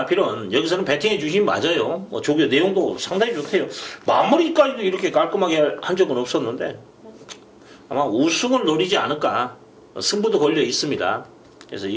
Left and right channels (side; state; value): both; identical; correlation 1.00